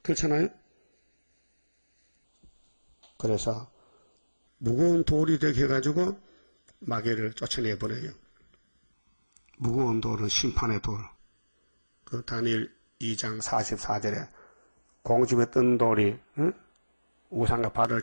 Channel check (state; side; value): inverted; both; correlation -1.00